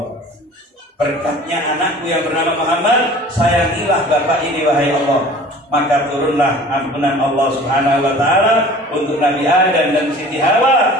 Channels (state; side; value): normal; both; correlation 0.45